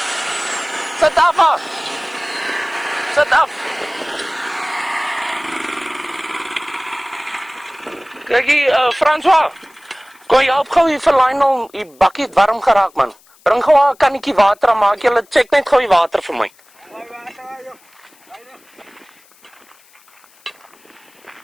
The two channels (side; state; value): left; noise; hiss, 29 dB below the sound